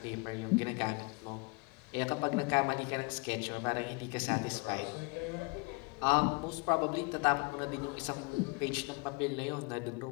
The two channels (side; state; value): right; quieter; 30.1 dB